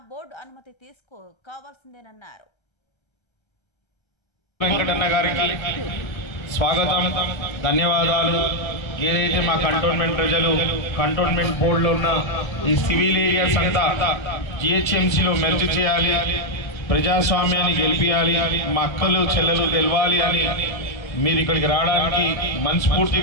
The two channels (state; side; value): late; right; 1.3 ms